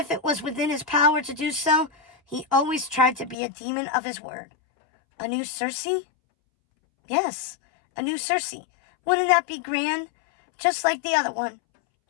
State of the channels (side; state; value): right; drops out; at 3.4 s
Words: it was within his power to do so, he always tried to be a demon of his word. A new Circe? Yes, a new Circe. Wouldn't that be grand? Just like the other one.